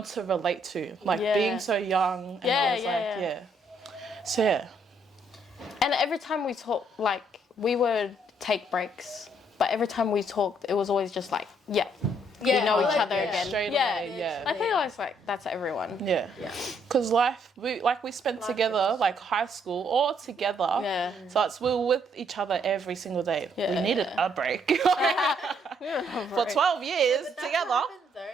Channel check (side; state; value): both; normal; correlation 0.70